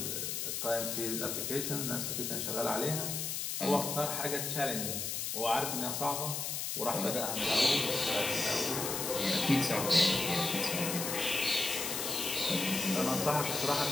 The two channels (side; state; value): left; noise; hiss, 2 dB below the sound